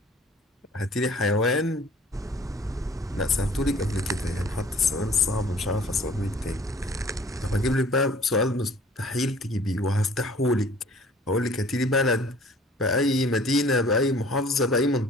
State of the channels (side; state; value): both; normal; correlation 0.51